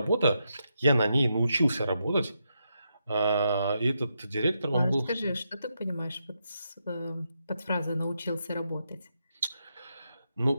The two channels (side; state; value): both; inverted; correlation -0.83